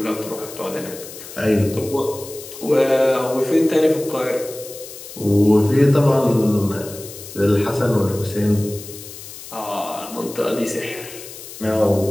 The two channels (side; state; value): left; noise; hiss, 14 dB below the sound